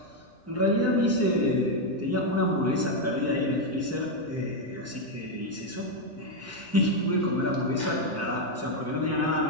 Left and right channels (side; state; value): both; normal; correlation 0.03